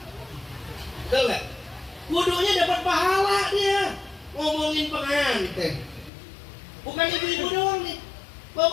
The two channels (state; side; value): drops out; right; at 6.1 s